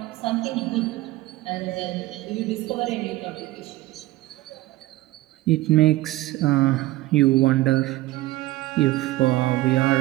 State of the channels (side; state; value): left; quieter; 17.3 dB